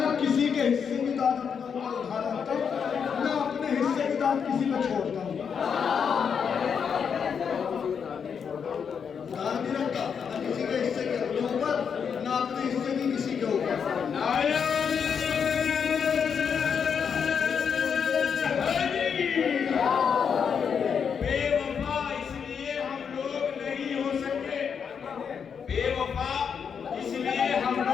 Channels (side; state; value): right; quieter; 6.9 dB